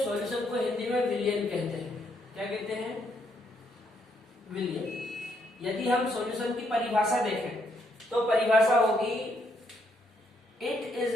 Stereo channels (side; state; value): both; normal; correlation 0.73